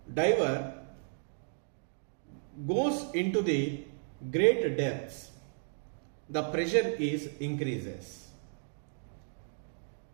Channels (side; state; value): left; silent; digital silence